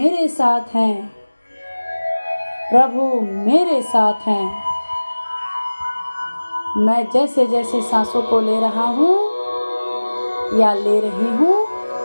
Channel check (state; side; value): inverted; both; correlation -1.00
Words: साथ हैं। प्रभु मेरे साथ हैं। मैं जैसे जैसे सांसों को ले रहा हूँ या ले रही हूँ,